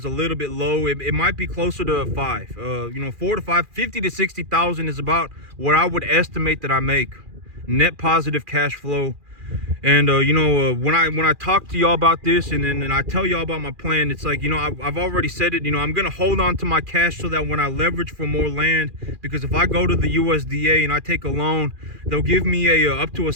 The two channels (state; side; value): late; left; 2.4 ms